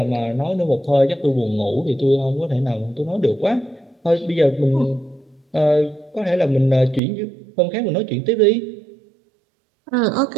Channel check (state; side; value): drops out; left; at 7.0 s